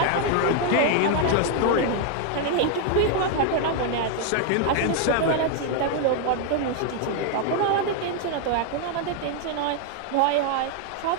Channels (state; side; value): different; both; correlation 0.00